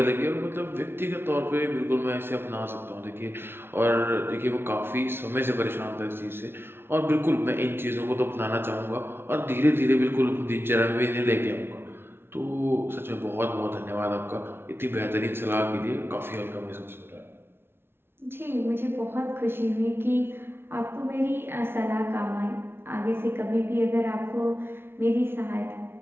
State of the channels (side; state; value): left; late; 0.11 ms